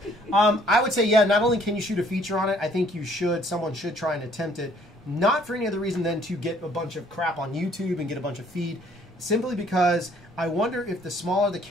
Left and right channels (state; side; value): normal; both; correlation 0.61